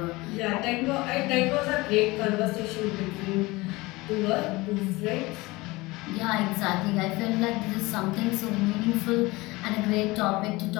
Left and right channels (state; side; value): quieter; right; 21.9 dB